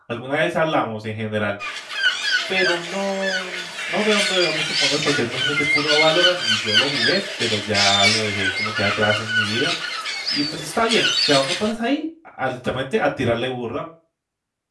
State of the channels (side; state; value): both; identical; correlation 1.00